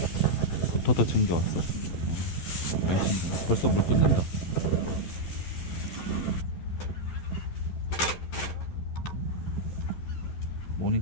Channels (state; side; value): late; right; 12 ms